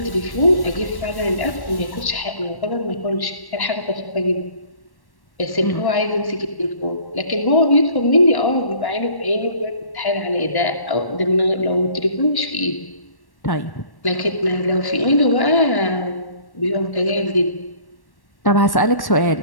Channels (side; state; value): right; late; 1.1 ms